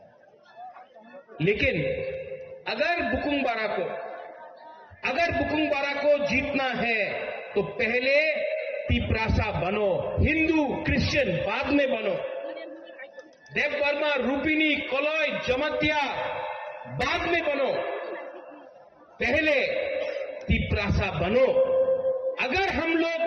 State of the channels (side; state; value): both; identical; correlation 1.00